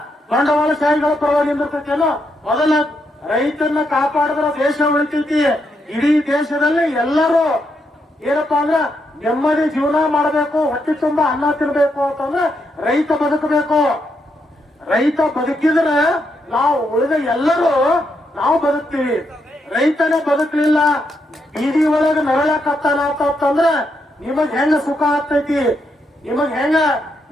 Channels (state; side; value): normal; both; correlation 0.80